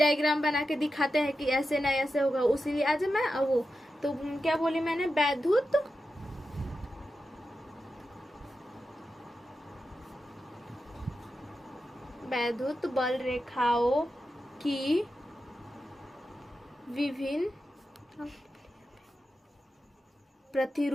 बना के दिखाते हैं कि ऐसे ना ऐसे होगा, उसीलिए आज मैं वो तो क्या बोली मैंने, वैद्युत बल रेखाओं की विभिन्न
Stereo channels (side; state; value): both; normal; correlation 0.90